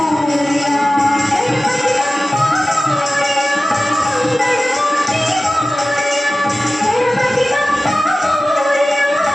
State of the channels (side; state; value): both; normal; correlation 0.96